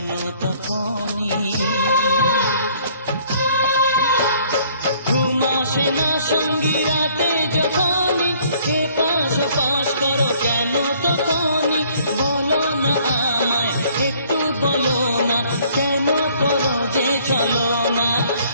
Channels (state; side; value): inverted; both; correlation -0.60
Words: তখনই। ঘুম আসে না সঙ্গী রাতে যখনই, এ পাশ ওপাশ করো কেন তখনই। বলো না আমায় একটু বলো না, কেন করো যে চলো না।